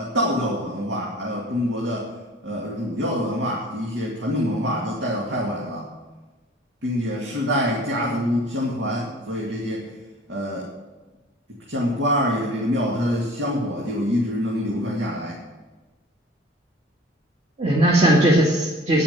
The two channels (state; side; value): normal; both; correlation 0.46